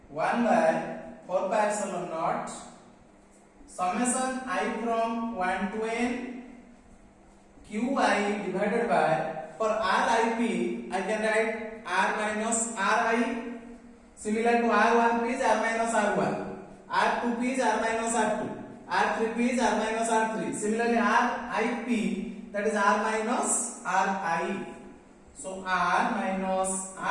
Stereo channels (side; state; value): both; identical; correlation 1.00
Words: 1 by 4 pi epsilon naught summation I from 1 to n Qi divided by, for Rip I can write R minus Ri. Similar to R1P is R minus R1, R2P is R minus R2, R3P is R minus R3. Similarly Rip, that is R minus Ri. So R minus